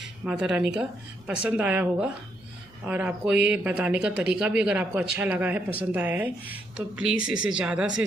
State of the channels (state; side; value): noise; right; rumble, 28 dB below the sound